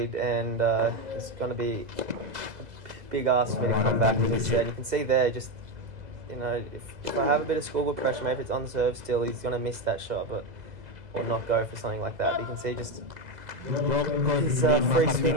and it's going to be a big ask for me to come back instead. You can see there, just, you know, if I have a bit of scoreboard pressure, maybe it's on serve still, he's going to miss that shot, or not go for something like that. But you can see just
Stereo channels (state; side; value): late; left; 2.0 ms